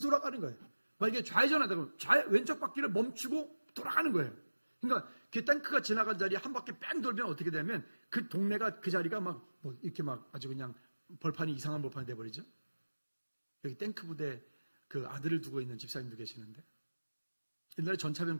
돌아가는 거예요. 만약에 좌회전하다 그러면 왼쪽 바퀴를 멈추고 돌아가는 거예요. 그러니까 그 탱크가 지나간 자리에 한 바퀴 뺑 돌면 어떻게 되면 그 동네가, 그 자리가 이렇게 아주 그냥 이상한 벌판이 돼버리죠. 여기 탱크 부대 그 아들을 두고 있는 집사님도 계시는데, 옛날에 전차병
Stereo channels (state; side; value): inverted; both; correlation -1.00